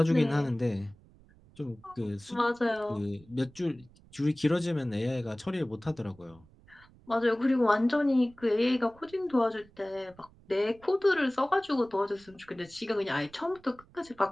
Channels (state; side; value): noise; right; rumble, 26 dB below the sound